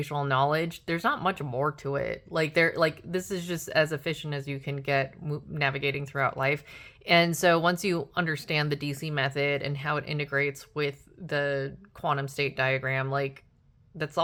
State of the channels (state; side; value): identical; both; correlation 1.00